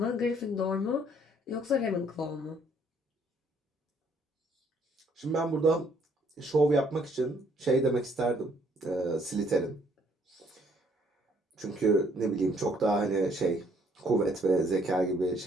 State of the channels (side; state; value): both; normal; correlation 0.65